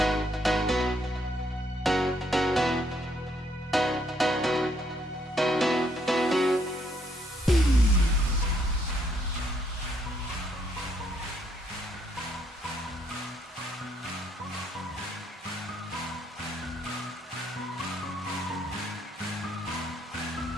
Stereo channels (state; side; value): normal; both; correlation 0.71